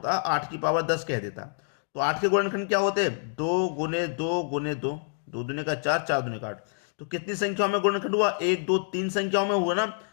8 की पावर 10 कह देता, तो 8 के गुणनखंड क्या होते? 2 गुने 2 गुने 2, 2 दूने का 4, 4 दूने का 8। तो कितनी संख्याओं में गुणनखंड हुआ? 1 2 3 संख्याओं में हुआ ना,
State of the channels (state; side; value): silent; right; 60 dB below the other